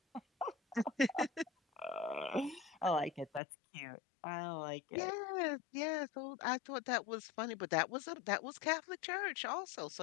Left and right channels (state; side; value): drops out; right; at 3.4 s